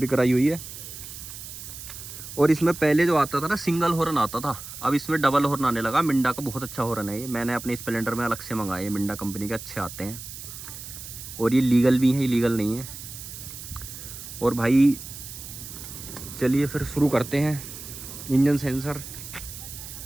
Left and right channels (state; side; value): noise; right; hiss, 12 dB below the sound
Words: कराई हुई है। और इसमें पहले जो आता था ना सिंगल हॉर्न आता था, अब इसमें डबल हॉर्न आने लगा। मिंडा का बहुत अच्छा हॉर्न है ये, मैंने अपने स्प्लेंडर में अलग से मंगाए, मिंडा कंपनी के अच्छे आते हैं, और ये लीगल भी है, इलीगल नहीं है। और भाई चलिए फिर शुरू करते हैं। इंजन सेंसर